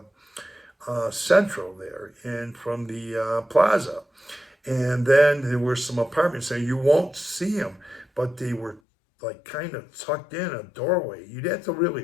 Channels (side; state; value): right; drops out; at 8.8 s